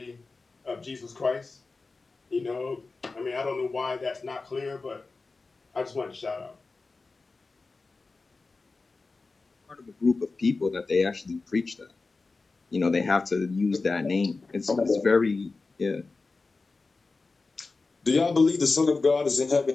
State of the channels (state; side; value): quieter; right; 3.8 dB